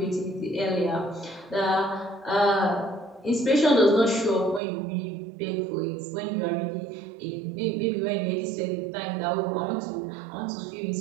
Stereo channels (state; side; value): drops out; left; at 4.6 s